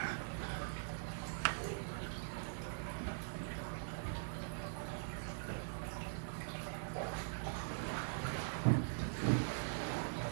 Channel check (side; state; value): left; silent; digital silence